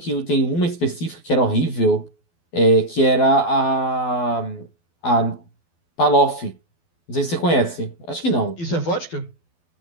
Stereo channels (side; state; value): right; late; 12 ms